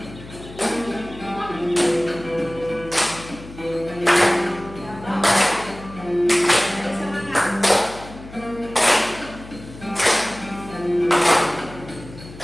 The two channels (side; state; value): left; noise; hum, 16 dB below the sound